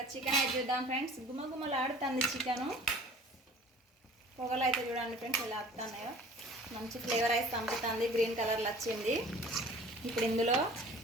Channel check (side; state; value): both; normal; correlation 0.47